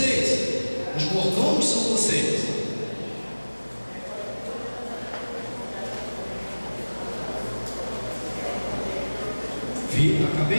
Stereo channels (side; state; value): both; inverted; correlation -1.00